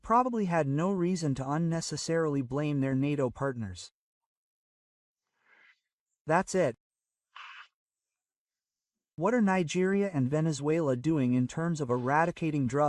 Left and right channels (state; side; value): identical; both; correlation 1.00